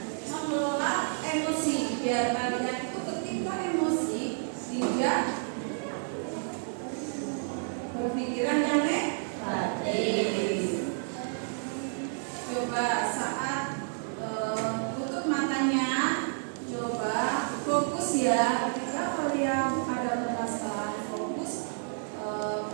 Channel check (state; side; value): silent; left; 58 dB below the other